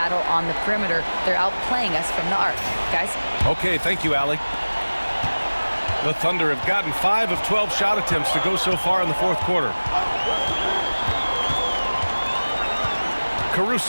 on the perimeter. They're outplaying us from the arc. Guys? Okay, thank you, Allie. The Thunder have gotten 5 of 12 shot attempts to go so far in the 4th quarter.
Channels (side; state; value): both; inverted; correlation -1.00